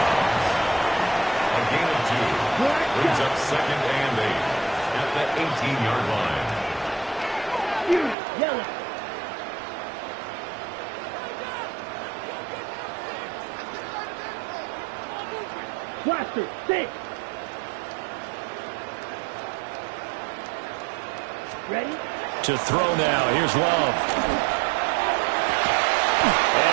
gain of 2. Brings up 2nd and 8 at the 18-yard line. Yellow. Blaster 6. Ready? To throw now. Here's Love.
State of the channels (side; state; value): left; drops out; at 8.2 s